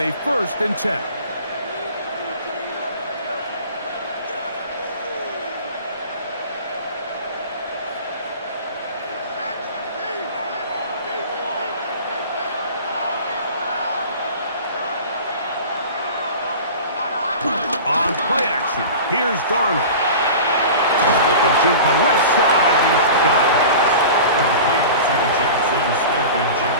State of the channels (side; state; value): both; inverted; correlation -0.37